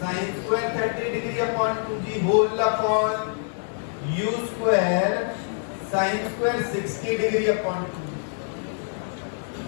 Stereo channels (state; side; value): silent; right; digital silence